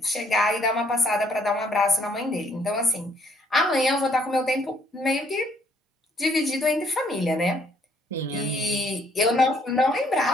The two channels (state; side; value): normal; both; correlation 0.65